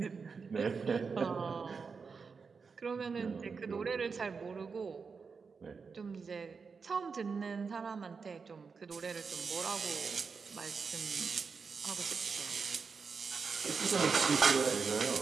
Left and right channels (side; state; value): left; quieter; 5.2 dB